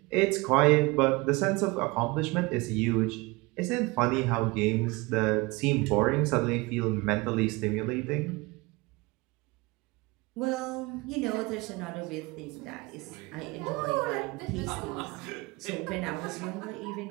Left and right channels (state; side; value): quieter; left; 24.1 dB